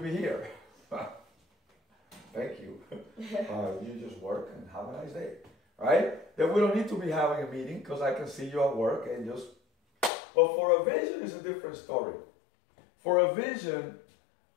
be here? Thank you. You just work and have a nice day. Right? Then we don't need to be having a meeting because I can see you at work and just... But for a vision, it's a different story. For a vision,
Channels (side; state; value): right; drops out; at 10.1 s